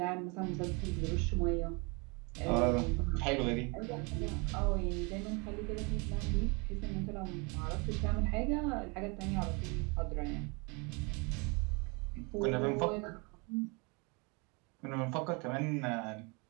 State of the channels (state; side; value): quieter; left; 30.6 dB